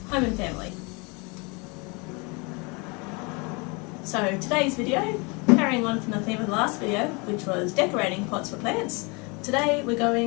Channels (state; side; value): quieter; right; 29.6 dB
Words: home and family. So today's video, carrying on from the theme of the last video, which was decorating pots for plants, today we're